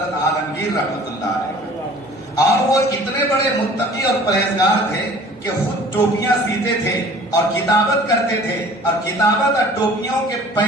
عالمگیر رحمت اللہ علیہ. اور وہ اتنے بڑے متقی اور پرہیزگار تھے کہ خود ٹوپیاں سیتے تھے اور کتابت کرتے تھے، اور کتابت اور ٹوپیوں کے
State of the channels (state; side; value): normal; both; correlation 0.49